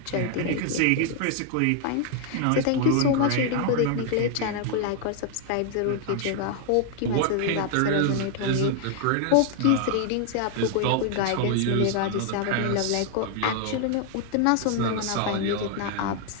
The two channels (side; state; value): both; different; correlation 0.00